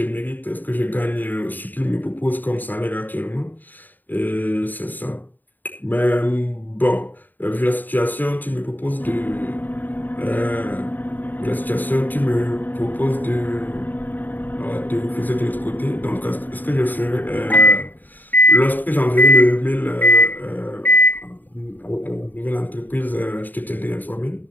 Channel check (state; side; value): late; right; 0.087 ms